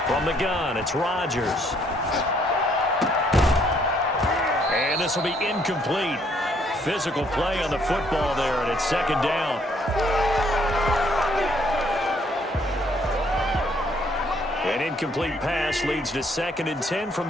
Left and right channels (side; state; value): both; normal; correlation 0.67